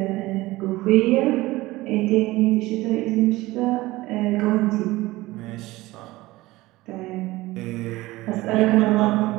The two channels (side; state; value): left; quieter; 19.0 dB